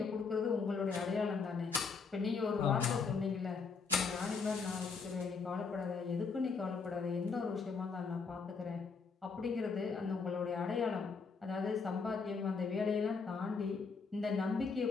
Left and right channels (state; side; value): quieter; right; 5.0 dB